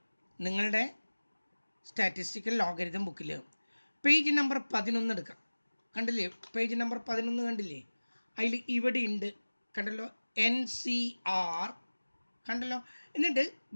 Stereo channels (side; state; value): both; inverted; correlation -1.00